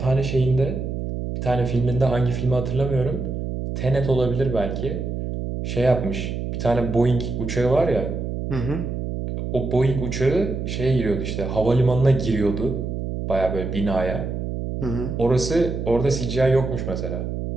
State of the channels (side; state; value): right; noise; hum, 4 dB below the sound